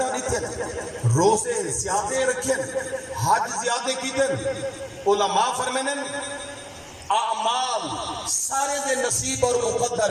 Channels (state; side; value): identical; both; correlation 1.00